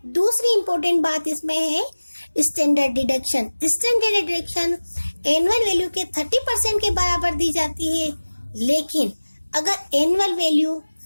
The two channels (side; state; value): both; inverted; correlation -1.00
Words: दूसरी इंपॉर्टेंट बात इसमें है standard deduction. Standard deduction annual value के 30% के बराबर दी जाती है, लेकिन अगर एनुअल वैल्यू